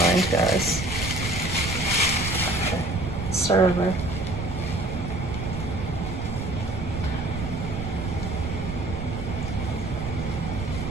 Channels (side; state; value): right; noise; rumble, 5 dB below the sound